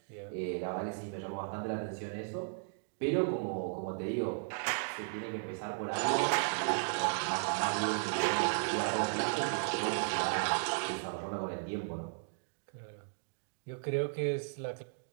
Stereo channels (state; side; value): silent; left; digital silence